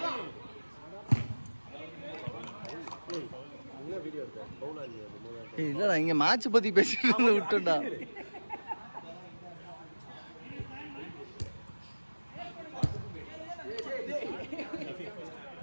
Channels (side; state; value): both; inverted; correlation -1.00